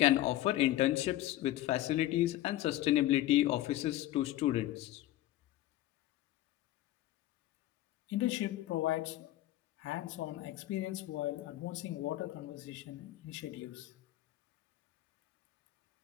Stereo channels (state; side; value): quieter; right; 14.9 dB